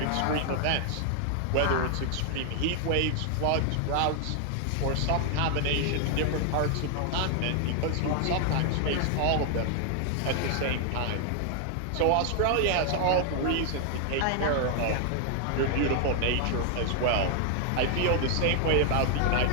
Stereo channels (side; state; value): both; different; correlation 0.00